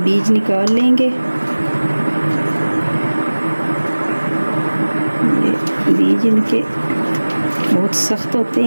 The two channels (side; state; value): both; inverted; correlation -1.00